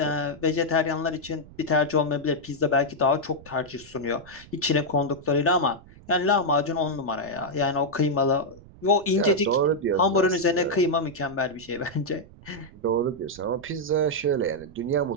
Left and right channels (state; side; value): noise; right; rumble, 21 dB below the sound